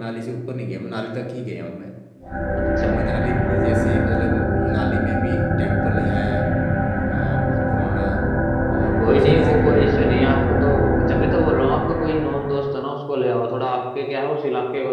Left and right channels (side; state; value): both; identical; correlation 1.00